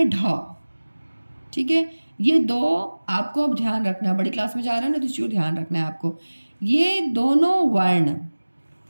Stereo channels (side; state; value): both; inverted; correlation -1.00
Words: ढ, ठीक है। ये दो आपको अब ध्यान रखना, बड़ी क्लास में जा रहे हो ना, तो इसी को ध्यान रखना है आपको। ये दोनों वर्ण